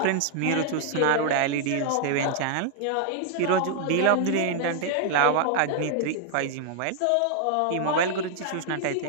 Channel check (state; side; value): different; both; correlation 0.00